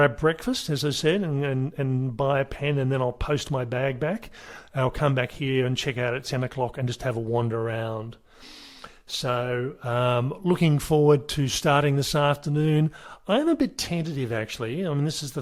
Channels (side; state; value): both; identical; correlation 1.00